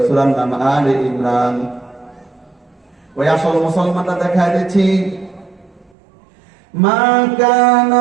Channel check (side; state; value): left; drops out; at 5.9 s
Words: সূরা নাম আলে ইমরান। ওই আসল মুসলমানটা দেখায় দিচ্ছি। মা